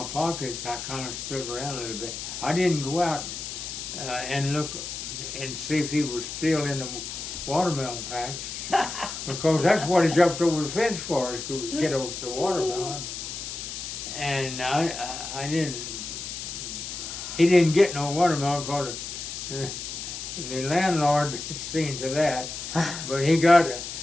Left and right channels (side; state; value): left; noise; hiss, 7 dB below the sound